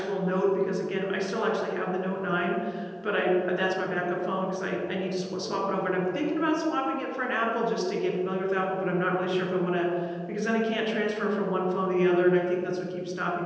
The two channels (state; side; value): identical; both; correlation 1.00